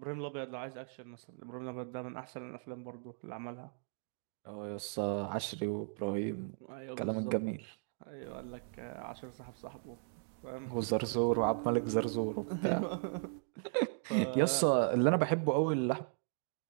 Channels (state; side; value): silent; left; digital silence